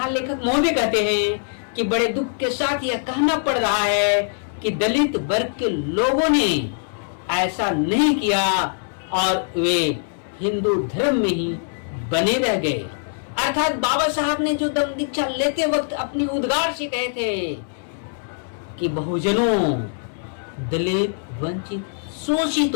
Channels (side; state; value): right; silent; 64 dB below the other